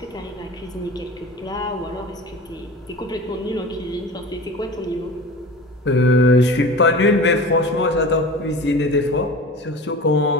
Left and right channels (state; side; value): normal; both; correlation 0.35